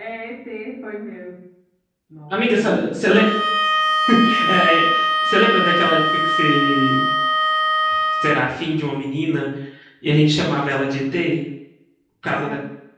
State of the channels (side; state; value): both; identical; correlation 1.00